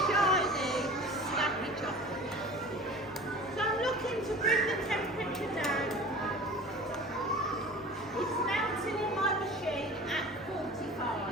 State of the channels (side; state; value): both; normal; correlation 0.39